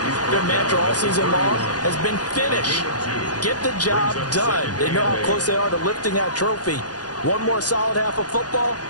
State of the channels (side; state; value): right; late; 0.69 ms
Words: their mantra all season long has been finish. Get the job done. They know how close they are to lifting that trophy. One more solid half of football,